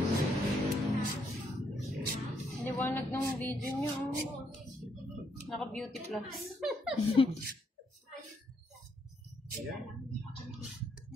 Liwanag ng video niyo. Naka-beauty plus.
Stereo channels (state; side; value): normal; both; correlation 0.74